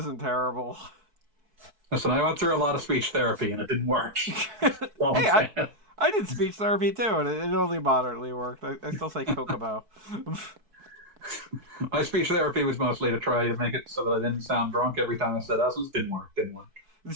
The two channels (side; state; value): left; late; 4.6 ms